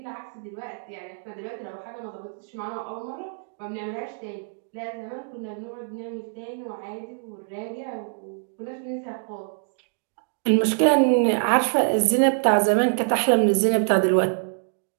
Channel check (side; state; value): left; silent; digital silence